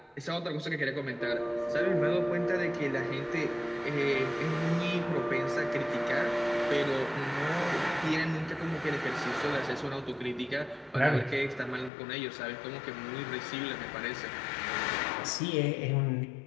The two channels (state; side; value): drops out; right; at 11.9 s